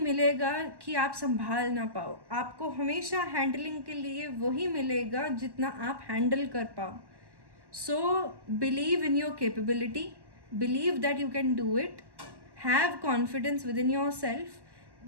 कि आप संभाल ना पाओ। आपको हमेशा हैंडलिंग के लिए वही मिलेगा जितना आप हैंडल कर पाओ। So believe in your capability, believe that you can do it, have confidence within yourself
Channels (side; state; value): left; late; 1.1 ms